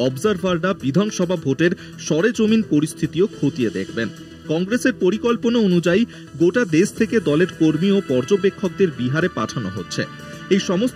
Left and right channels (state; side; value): identical; both; correlation 1.00